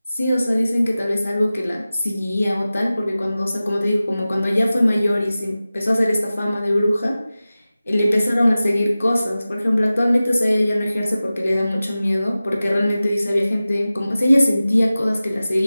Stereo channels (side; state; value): both; inverted; correlation -0.96